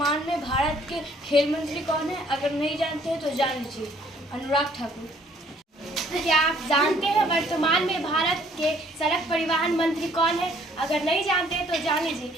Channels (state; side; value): normal; both; correlation 0.62